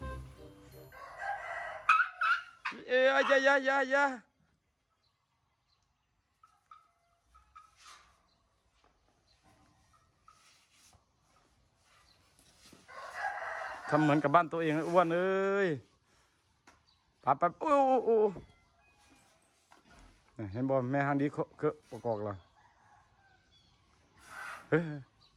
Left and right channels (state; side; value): identical; both; correlation 1.00